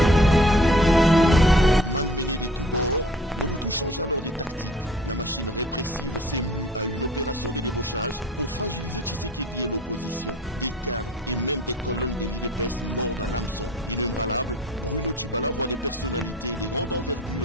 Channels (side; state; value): both; normal; correlation 0.48